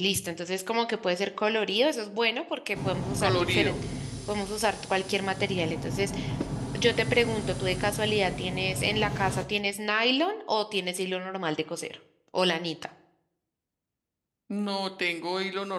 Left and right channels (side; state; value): both; identical; correlation 1.00